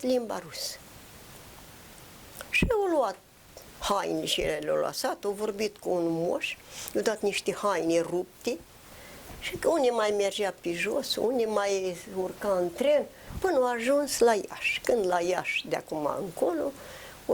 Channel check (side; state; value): both; identical; correlation 1.00